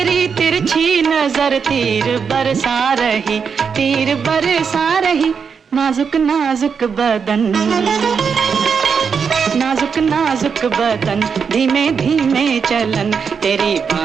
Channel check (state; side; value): quieter; left; 6.2 dB